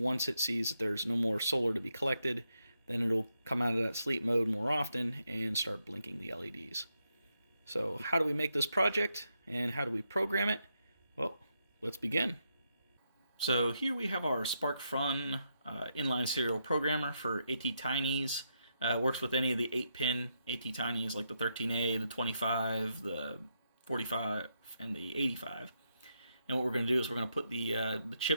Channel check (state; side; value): inverted; both; correlation -0.81